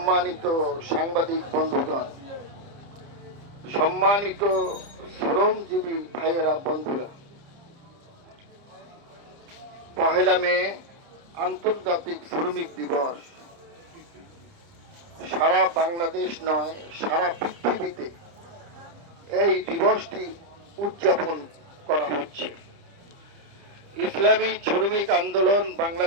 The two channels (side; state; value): left; late; 30 ms